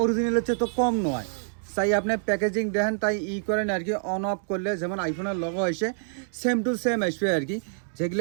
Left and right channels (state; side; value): silent; left; digital silence